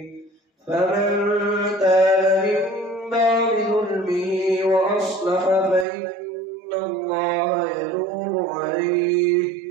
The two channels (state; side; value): drops out; left; at 5.9 s